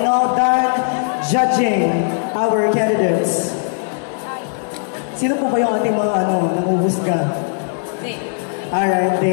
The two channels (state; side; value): silent; right; 61 dB below the other